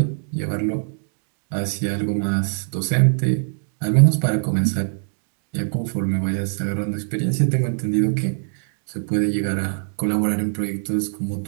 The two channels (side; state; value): left; silent; digital silence